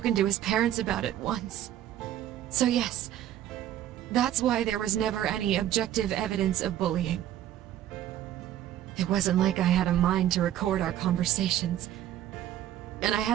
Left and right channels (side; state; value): left; quieter; 11.8 dB